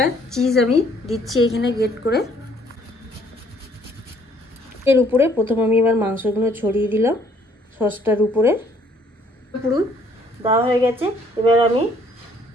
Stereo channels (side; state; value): both; normal; correlation 0.62